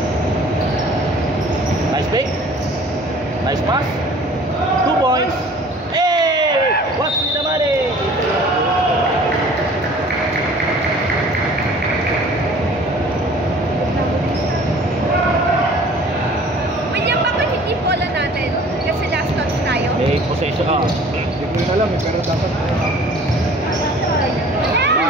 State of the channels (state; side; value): normal; both; correlation 0.49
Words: Nice pick. Nice pass. 2 points. Hey! What's with the money? William, bakit hindi bola natin? Kasi last touch tayo. May possession. Hindi ko rin alam pero dapat.